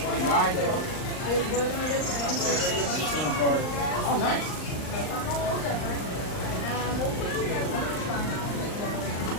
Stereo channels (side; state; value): right; late; 39 ms